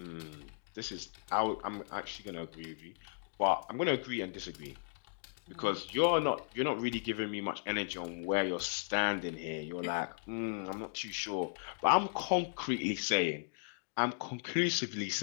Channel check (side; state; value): right; silent; digital silence